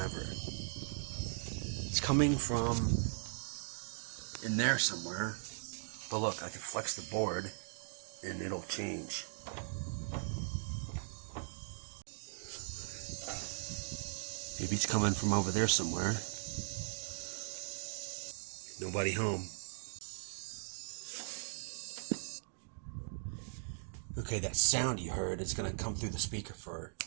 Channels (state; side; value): silent; left; digital silence